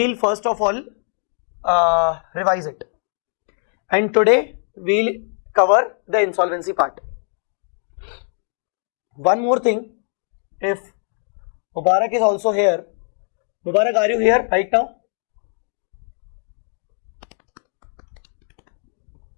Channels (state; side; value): silent; right; 64 dB below the other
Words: first of all revise it, and today we'll cover the insolvency part. One more thing, if Mubarak is also here. Mubarak, are you here right now?